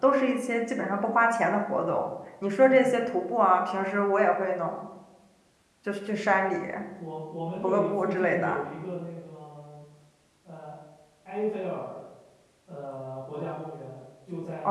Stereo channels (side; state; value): both; identical; correlation 1.00